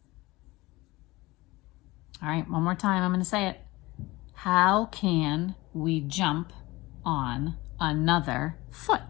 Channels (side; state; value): right; quieter; 20.6 dB